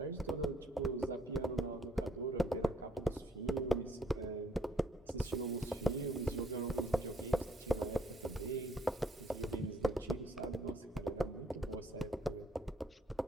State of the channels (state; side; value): normal; both; correlation 0.66